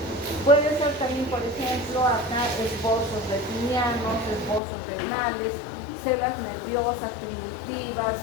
Puede ser también, por ejemplo, acá esbozos retinianos, esbozos renales, células nerviosas, primitivas,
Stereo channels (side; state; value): right; drops out; at 4.6 s